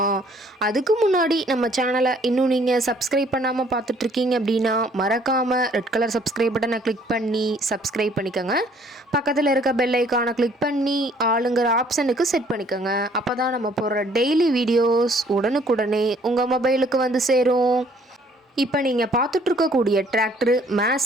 அதுக்கு முன்னாடி நம்ம சேனலை இன்னும் நீங்கள் சப்ஸ்கிரைப் பண்ணாமல் பார்த்துட்ருக்கீங்க அப்படின்னா மறக்காமல் ரெட் கலர் சப்ஸ்கிரைப் பட்டனை கிளிக் பண்ணி சப்ஸ்கிரைப் பண்ணிக்கோங்க. பக்கத்தில் இருக்க பெல் ஐக்கானை கிளிக் பண்ணி ஆளுங்கிற ஆப்ஷனுக்கு செட் பண்ணிக்கோங்க. அப்போ தான் நம்ம போடுற டெய்லி வீடியோஸ் உடனுக்குடனே உங்கள் மொபைலுக்கு வந்து சேரும். இப்போ நீங்கள் பார்த்துட்ருக்கக்கூடிய டிராக்டரு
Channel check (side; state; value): both; normal; correlation 0.60